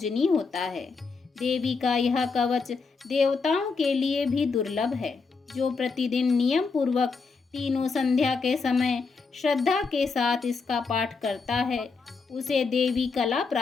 होता है। देवी का यह कवच देवताओं के लिए भी दुर्लभ है। जो प्रतिदिन नियम पूर्वक तीनों संध्या के समय श्रद्धा के साथ इसका पाठ करता है उसे देवी कला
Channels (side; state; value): right; quieter; 4.6 dB